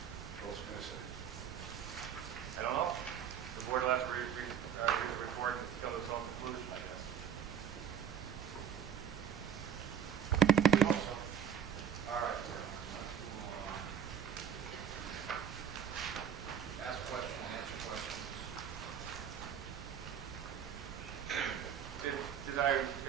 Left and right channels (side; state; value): left; quieter; 8.3 dB